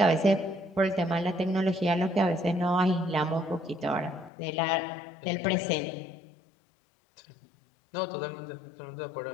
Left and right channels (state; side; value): drops out; right; at 4.3 s